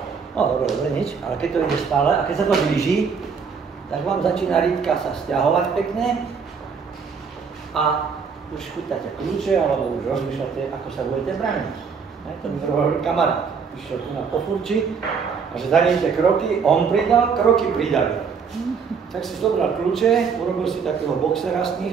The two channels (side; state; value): left; quieter; 6.0 dB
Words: No dobre, nič, ale keď to ide stále a keď sa to blíži, tak vám začína rýbka sa sťahovať pekne a už chytáte kľúče alebo už rozmýšľate, ako sa budete brániť. To mi hovoril kamarát, išiel tu na pofurči a že danejte kroky, on pridal, kroky pridali. Tak si zobral kľúče, urobil si takého boxera z